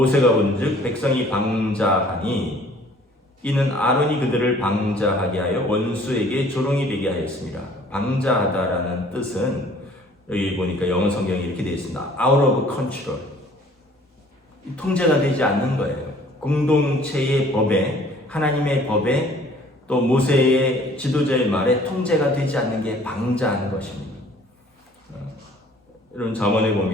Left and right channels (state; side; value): normal; both; correlation 0.54